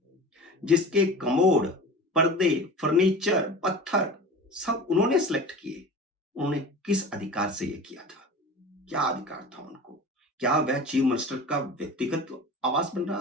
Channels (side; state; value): both; normal; correlation 0.35